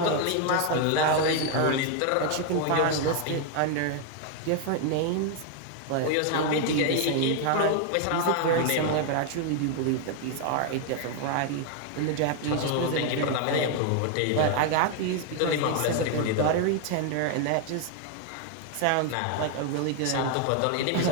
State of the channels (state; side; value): different; both; correlation 0.00